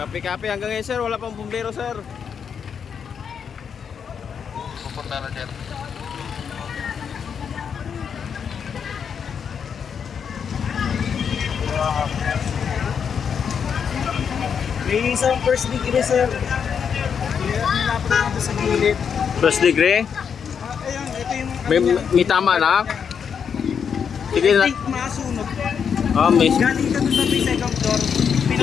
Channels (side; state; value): right; quieter; 7.1 dB